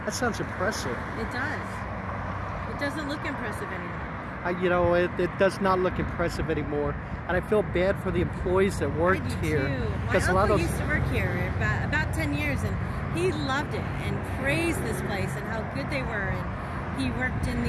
That sounds impressive. It does. It doesn't look impressive anymore. You know, it does not look impressive anymore, and I feel bad for the employees that worked here. Because my uncle used to work here about 10 years, and he loved it and praised this place and how good they were. And he worked in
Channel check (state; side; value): identical; both; correlation 1.00